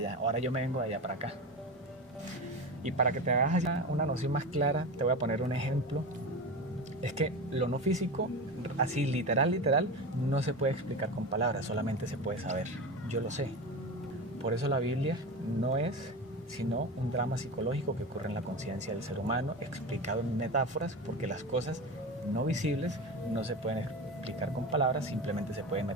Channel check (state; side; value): normal; both; correlation 0.25